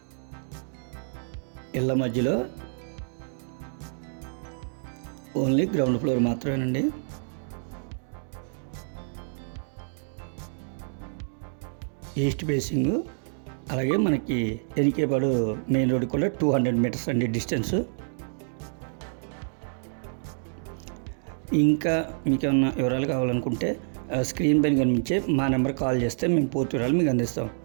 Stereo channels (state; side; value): silent; left; digital silence